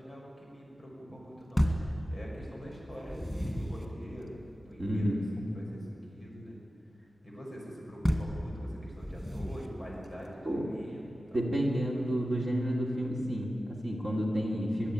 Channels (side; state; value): both; normal; correlation 0.94